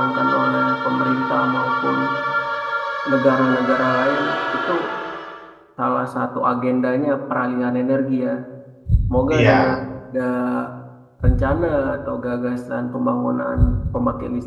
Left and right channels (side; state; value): both; identical; correlation 1.00